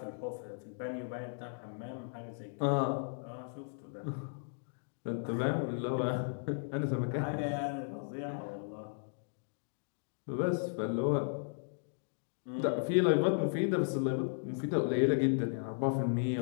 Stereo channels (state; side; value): silent; right; digital silence